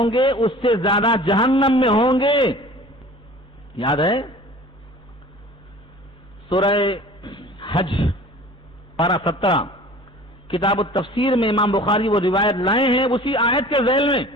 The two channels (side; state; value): both; normal; correlation 0.44